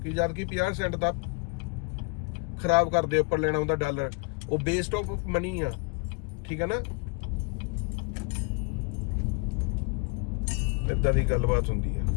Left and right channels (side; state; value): right; quieter; 33.7 dB